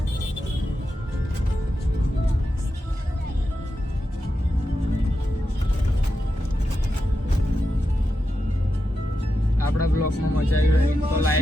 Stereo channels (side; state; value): both; normal; correlation 0.89